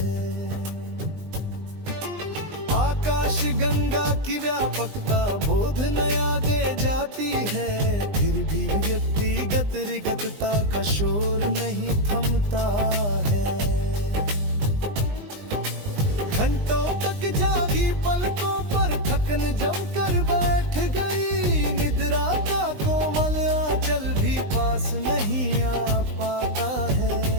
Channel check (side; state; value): left; late; 20 ms